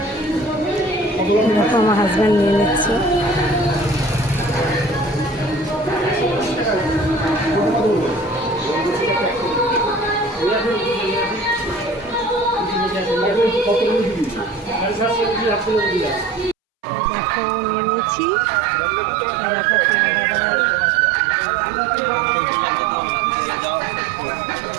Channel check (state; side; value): drops out; left; at 16.6 s